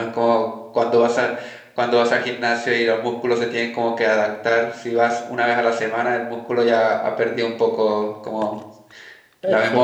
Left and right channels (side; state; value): both; identical; correlation 1.00